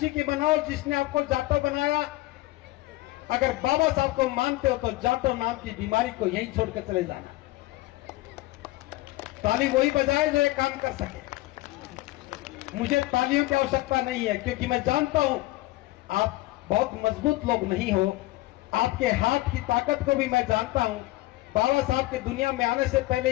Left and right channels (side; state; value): right; quieter; 18.8 dB